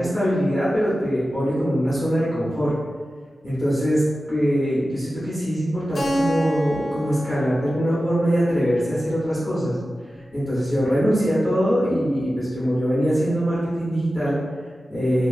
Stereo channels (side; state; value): both; normal; correlation 0.94